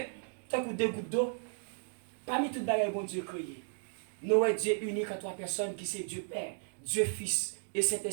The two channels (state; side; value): silent; left; digital silence